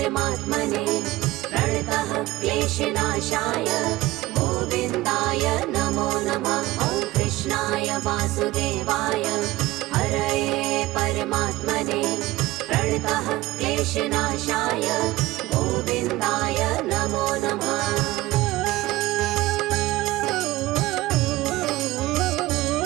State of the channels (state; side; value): quieter; left; 18.2 dB